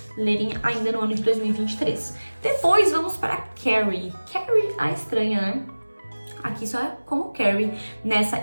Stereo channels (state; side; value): inverted; both; correlation -1.00